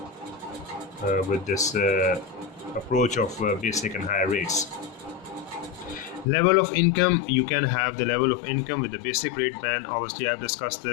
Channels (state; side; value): drops out; right; at 6.2 s